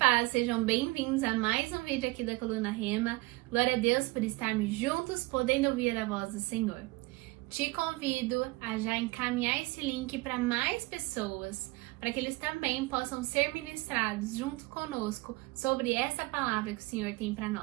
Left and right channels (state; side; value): quieter; left; 23.1 dB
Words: sejam bem-vindos a mais um vídeo aqui da Coluna Rema. Glória a Deus por estarmos juntos, podendo ouvir a voz do Senhor. Te convido a já encaminhar esse link para mais pessoas, para que eles também possam ser ministrados junto conosco sobre essa palavra que o Senhor tem para